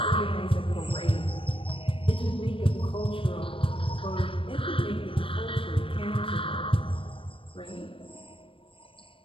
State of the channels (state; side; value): late; right; 0.26 ms